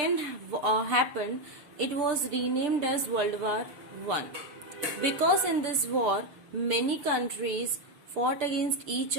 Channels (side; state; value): left; late; 6.7 ms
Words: happened, it was renamed as World War I. Because in this war, many countries fought against each